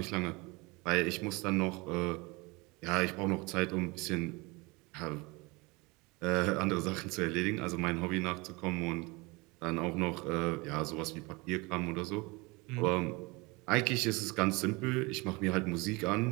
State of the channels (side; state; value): left; quieter; 25.6 dB